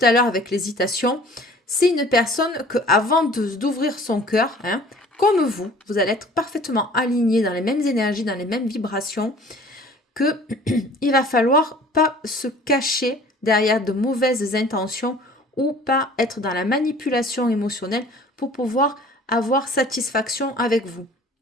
à l'heure avec l'hésitation. C'est une personne que, avant d'ouvrir son cœur, hein, comme vous allez être parfaitement aligné dans les mêmes énergies, dans les mêmes vibrations. que il va falloir pas se cacher derrière de mauvaises intentions ou pas être dans la manipulation émotionnelle pour pouvoir avoir satisfaction avec vous.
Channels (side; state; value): both; normal; correlation 0.49